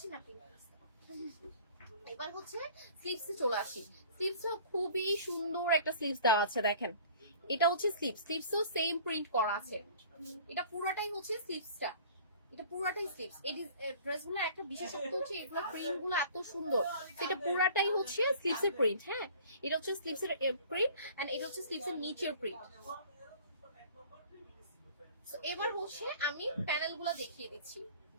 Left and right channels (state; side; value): inverted; both; correlation -0.48